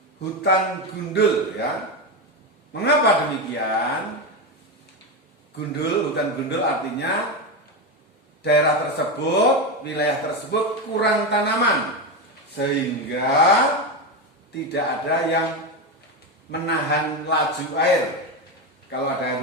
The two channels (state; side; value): normal; both; correlation 0.14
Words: hutan gundul, ya. Mengapa demikian? Hutan gundul artinya daerah tersebut, wilayah tersebut kurang tanaman, sehingga tidak ada yang menahan laju air. Kalau ada air